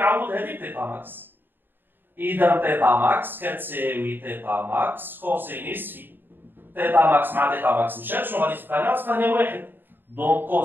هذه بطيطا ماكس. اذا طيطا ماكس كتساوي طيطا ماكس كوسينيس في. طيطا ماكس مع طيطا ماكس مشات، شنو غادي تبقى لنا؟ تبقى لنا واحد، دونك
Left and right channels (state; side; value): late; left; 0.095 ms